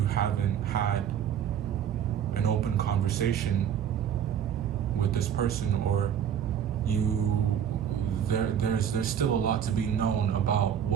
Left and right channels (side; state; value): left; quieter; 9.0 dB